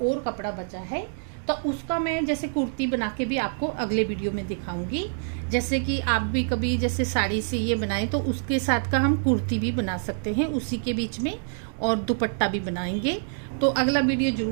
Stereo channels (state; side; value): silent; left; digital silence